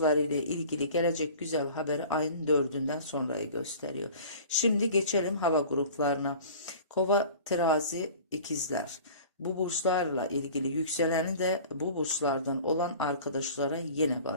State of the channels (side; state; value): both; inverted; correlation -0.43